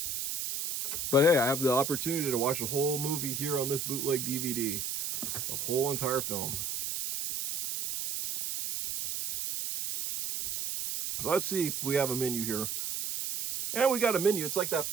But hey, I have the opportunity to watch a whole movie here on this bootleg DVD. The whole entire film. Let's see if we have a menu here. And we got a menu. It's like that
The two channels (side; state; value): right; noise; hiss, 3 dB below the sound